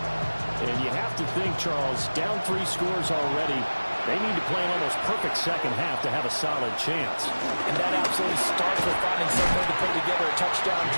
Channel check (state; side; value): inverted; both; correlation -1.00